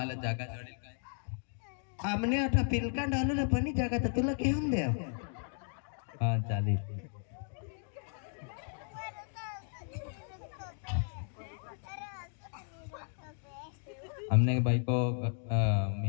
जागा जोडील काय आमने आता पिलका डालू पण जागा तर तुला घेऊन द्या हा चालेल हमने बाई को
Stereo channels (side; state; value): right; silent; 55 dB below the other